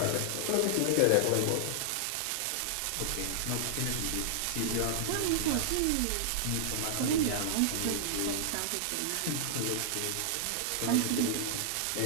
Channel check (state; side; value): different; both; correlation -0.01